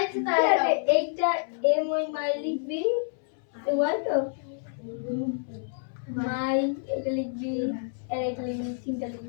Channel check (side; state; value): right; silent; 59 dB below the other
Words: তাই এইটা এম ওই মাই লিখবি, ওয়াল তো মাই এটা লিখবি, আর এটা লিখবি, তিনটা